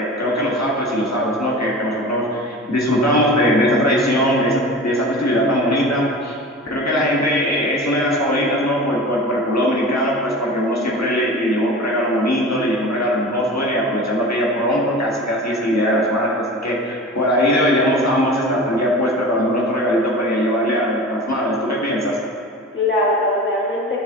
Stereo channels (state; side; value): normal; both; correlation 0.35